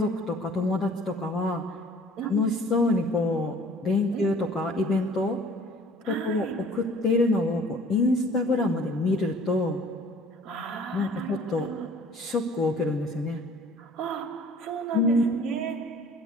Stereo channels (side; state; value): both; normal; correlation 0.51